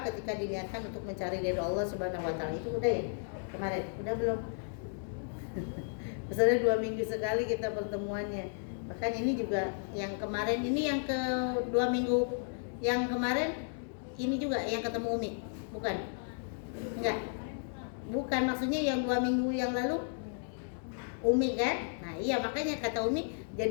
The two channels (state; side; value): silent; right; digital silence